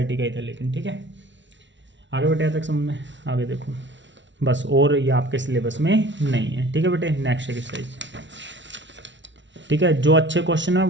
का ही था लेकिन। ठीक है, आगे बेटे तक समझ में, आगे देखो बस, और ये आपके सिलेबस में नहीं है। ठीक है बेटे, नेक्स्ट एक्सरसाइज। ठीक है, जो अच्छे क्वेश्चन है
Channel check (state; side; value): late; left; 0.54 ms